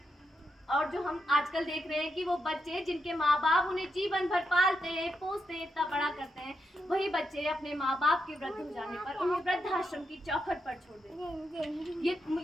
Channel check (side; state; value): both; normal; correlation 0.84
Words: और जो हम आजकल देख रहे हैं कि वो बच्चे जिनके माँ बाप उन्हें जीवन भर पालते हैं, पोसते हैं, इतना बड़ा करते हैं, वही बच्चे अपने माँ बाप के वृद्ध हो जाने पर उन्हें वृद्धाश्रम की चौखट पर छोड़ देते हैं। ये